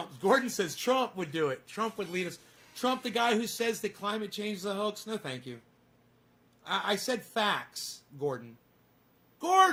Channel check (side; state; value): both; identical; correlation 1.00